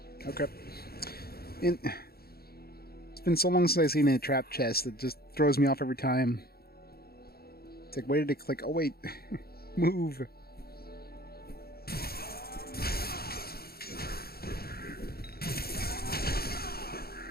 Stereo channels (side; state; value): right; late; 0.45 ms